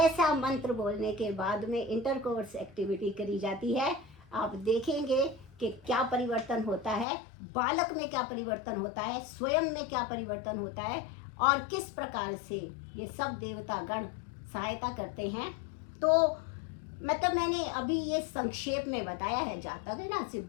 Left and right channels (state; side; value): drops out; right; at 7.1 s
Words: मंत्र बोलने के बाद में इंटरकोर्स एक्टिविटी करी जाती है। आप देखेंगे कि क्या परिवर्तन होता है, बालक में क्या परिवर्तन होता है, स्वयं में क्या परिवर्तन होता है, और किस प्रकार से ये सब देवता गण सहायता करते हैं। तो मतलब मैंने अभी ये संक्षेप में बताया है, जहाँ तक है ना से